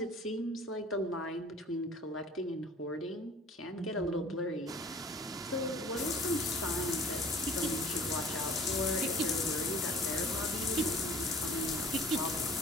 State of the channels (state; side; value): normal; both; correlation 0.48